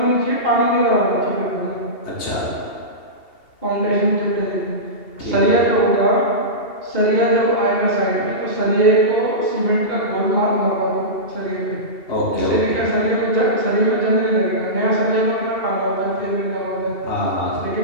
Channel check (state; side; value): late; right; 2.8 ms